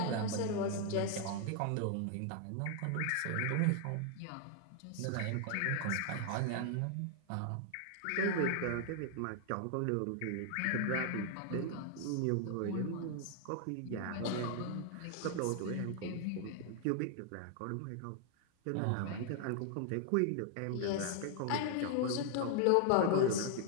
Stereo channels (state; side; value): different; both; correlation 0.00